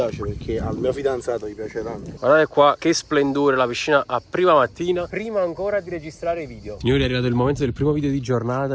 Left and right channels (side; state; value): both; identical; correlation 1.00